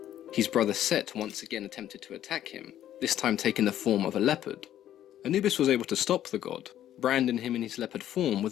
his brother Set once again attempted to attack him, this time taking the form of a leopard. Anubis was able to stop the god, branding him in his leopard form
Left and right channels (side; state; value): right; quieter; 11.7 dB